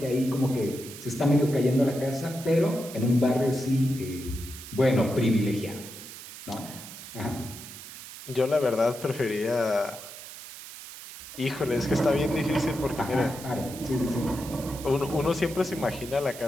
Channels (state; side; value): noise; right; hiss, 14 dB below the sound